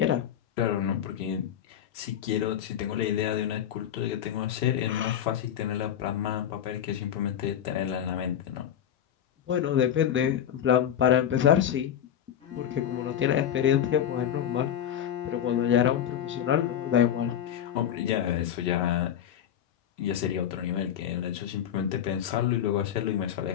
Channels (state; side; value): quieter; right; 9.9 dB